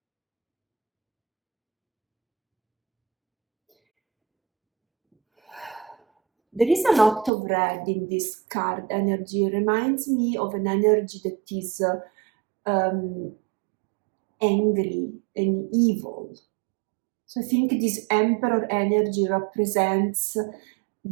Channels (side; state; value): left; drops out; at 7.3 s